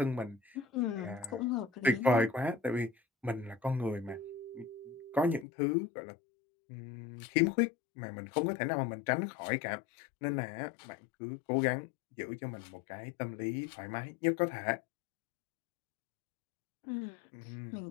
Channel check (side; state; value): right; drops out; at 5.5 s